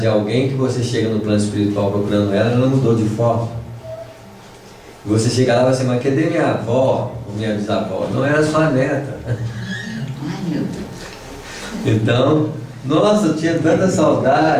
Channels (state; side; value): identical; both; correlation 1.00